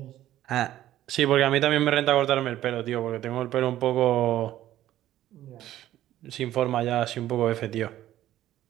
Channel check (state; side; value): quieter; left; 13.3 dB